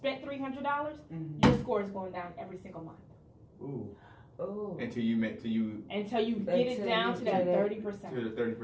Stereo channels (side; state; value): both; identical; correlation 1.00